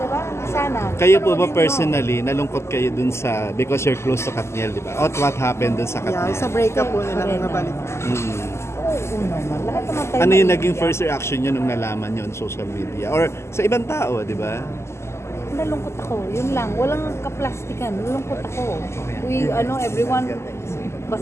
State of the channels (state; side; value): late; right; 0.13 ms